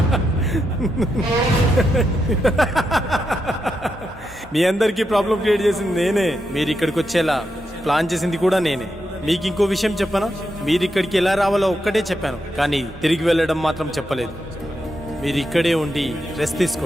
మీ అందరికీ ప్రాబ్లం క్రియేట్ చేసింది నేనే. మీరు ఇక్కడికి వచ్చేలా ప్లాన్ చేసింది కూడా నేనే. మీకు ఇంకో విషయం చెప్పనా? మీరు ఇక్కడికి ఎలా రావాలో ఒక్కటే చెప్పాను, కానీ తిరిగి వెళ్ళడం మాత్రం చెప్పలేదు. మీరు ఇక్కడే ఉండి రెస్ట్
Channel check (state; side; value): normal; both; correlation 0.84